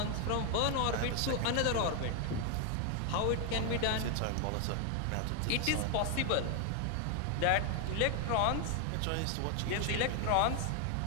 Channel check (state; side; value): different; both; correlation 0.00